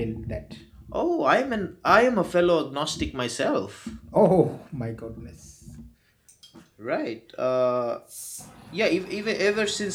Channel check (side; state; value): both; identical; correlation 1.00